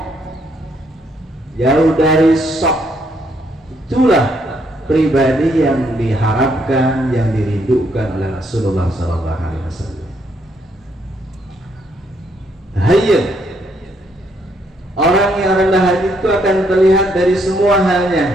jauh dari sok. Itulah pribadi yang diharapkan, yang dirindukan oleh Rasulullah SAW. Hayyin, orang yang rendah hati itu akan terlihat dari semua halnya,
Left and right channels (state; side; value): normal; both; correlation 0.72